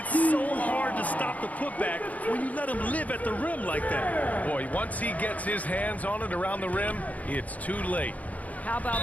so hard to stop the putback when you let him live at the rim like that. Boy, once he gets his hands on it around the rim, it's too late. How about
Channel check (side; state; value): right; late; 0.073 ms